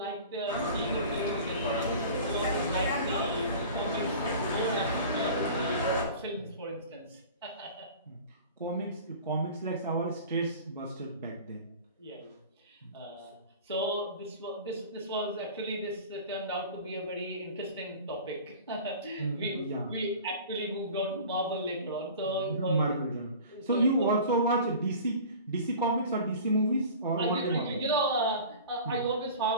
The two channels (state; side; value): inverted; both; correlation -0.40